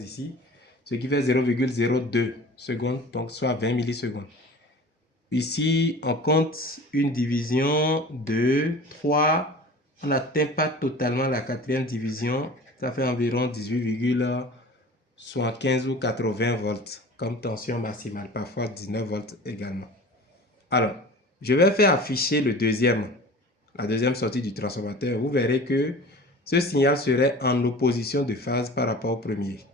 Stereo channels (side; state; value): both; normal; correlation 0.40